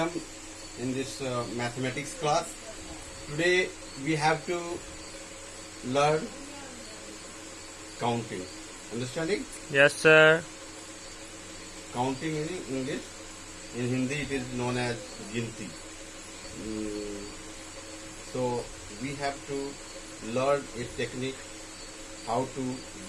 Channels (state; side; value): identical; both; correlation 1.00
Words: in this mathematics class. Today we have to learn counting. Understanding? Yes, sir. Counting in English. In Hindi it is known as ginti. So we have to learn a technique how to